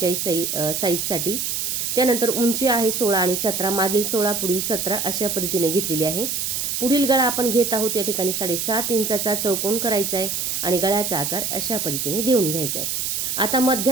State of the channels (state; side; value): noise; right; hiss, 1 dB below the sound